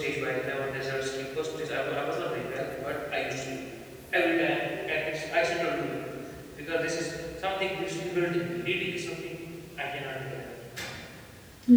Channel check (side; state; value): both; identical; correlation 1.00